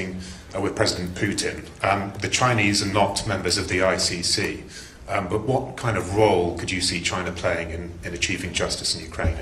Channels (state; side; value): identical; both; correlation 1.00